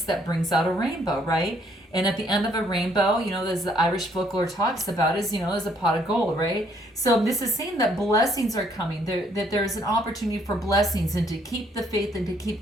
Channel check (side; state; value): both; normal; correlation 0.67